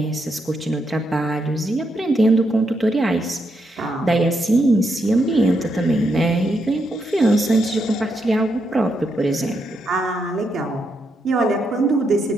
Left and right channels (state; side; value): normal; both; correlation 0.80